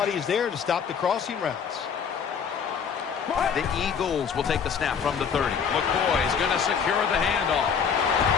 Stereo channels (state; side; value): quieter; right; 6.8 dB